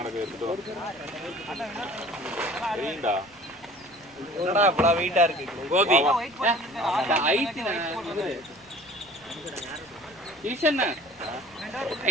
எடுத்துட்டு வா. சரிடா. என்னடா இவ்வளவு வெயிட்டா இருக்கு கோபி ஹைட் ஈஷன்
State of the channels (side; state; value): left; noise; rumble, 29 dB below the sound